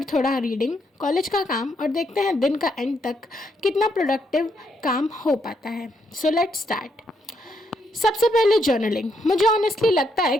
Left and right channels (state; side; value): normal; both; correlation 0.76